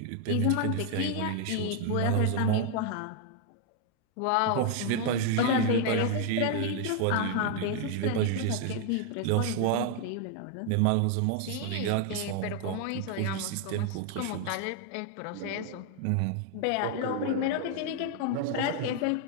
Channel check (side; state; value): both; different; correlation 0.00